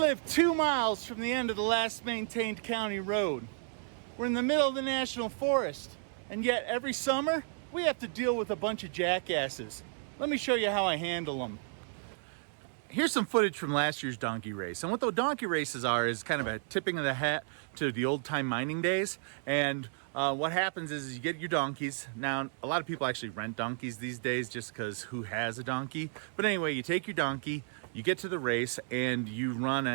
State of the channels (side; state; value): left; silent; 56 dB below the other